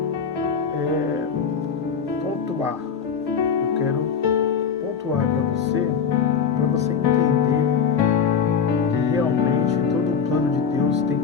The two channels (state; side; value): quieter; right; 6.7 dB